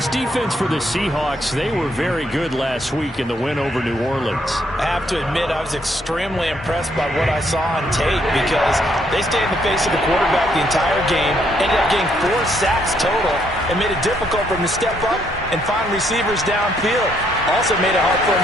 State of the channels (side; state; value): both; normal; correlation 0.72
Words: defense for the Seahawks, they were very good last week in the win over New Orleans. I have to admit, I was extremely impressed by what I saw on tape because they stayed in the face of the quarterback the entire game, ended up getting 4 sacks total, and made it difficult for him to step up and find receivers downfield. Also made it hard for